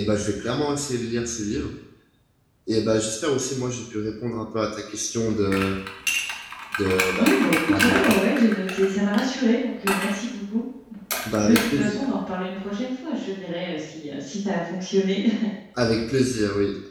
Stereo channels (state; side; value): identical; both; correlation 1.00